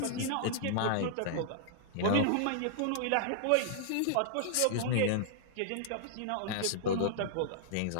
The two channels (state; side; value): different; both; correlation -0.01